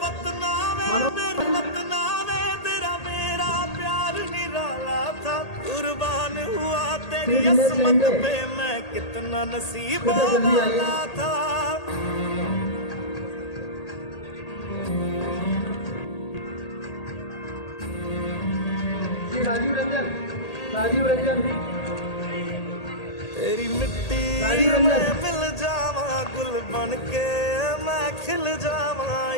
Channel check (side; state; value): right; late; 1.8 ms